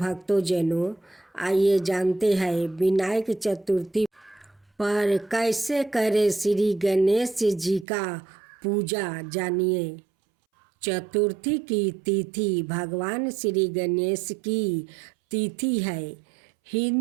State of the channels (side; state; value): left; drops out; at 7.9 s